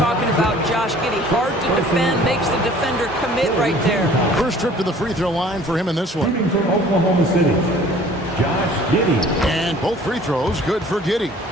about Josh Giddey. Hard to defend, makes the defender commit right there. First trip to the free throw line for him in this one. Shooting from Oklahoma City, Josh Giddey. And both free throws good for Giddey.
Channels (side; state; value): both; normal; correlation 0.51